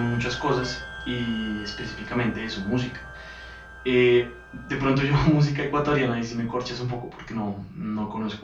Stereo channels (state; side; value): identical; both; correlation 1.00